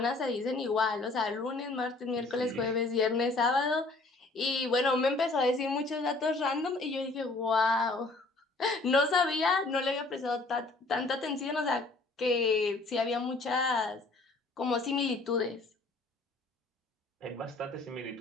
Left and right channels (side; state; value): right; quieter; 3.3 dB